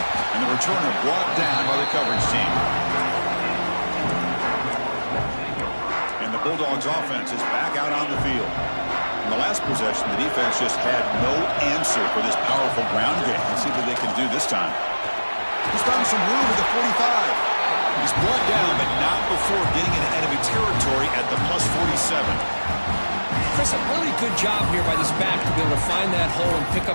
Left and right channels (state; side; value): inverted; both; correlation -1.00